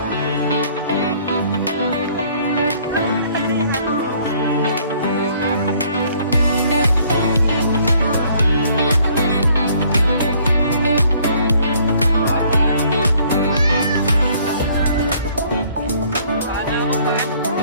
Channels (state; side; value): inverted; both; correlation -0.60